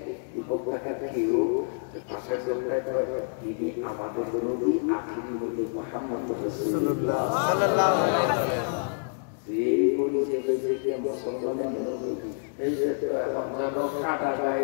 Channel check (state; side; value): silent; right; digital silence